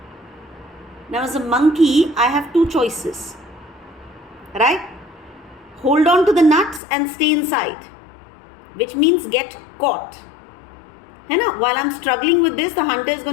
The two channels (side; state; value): right; drops out; at 6.8 s